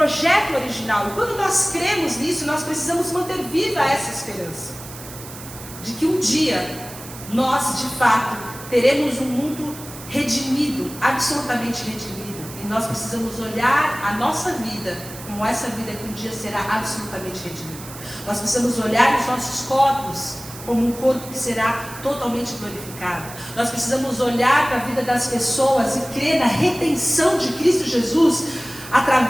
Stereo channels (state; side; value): noise; right; hiss, 14 dB below the sound